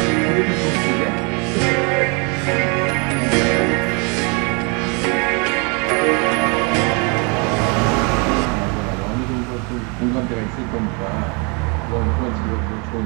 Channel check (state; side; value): quieter; left; 32.8 dB